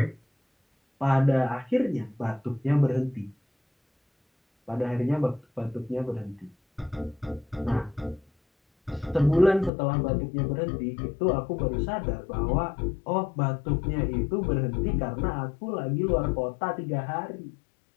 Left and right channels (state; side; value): drops out; right; at 9.7 s